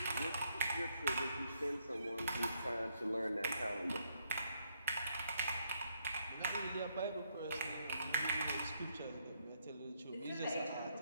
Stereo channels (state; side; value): inverted; both; correlation -0.74